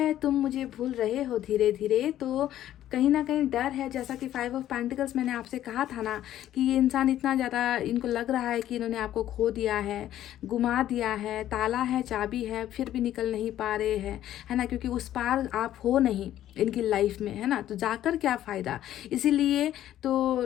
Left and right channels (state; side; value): quieter; right; 12.4 dB